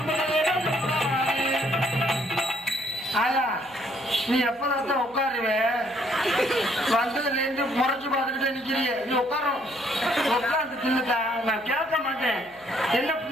ஆயா நீ எப்பதான் உட்காருவே? வந்ததுல இருந்து முறைச்சு பார்த்துக்கிட்டே நிக்கிறிய. நீ உட்காரும் உட்காந்து தின்னுட்டா நான் கேட்க மாட்டேன். என்ன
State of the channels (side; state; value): left; noise; hum, 29 dB below the sound